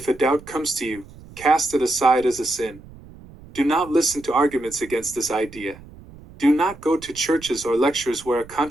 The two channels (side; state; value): right; noise; rumble, 20 dB below the sound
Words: a doubt comes to you, cast it aside as a sin. Do not listen to arguments against this idea. Do not go to churches or lectures where a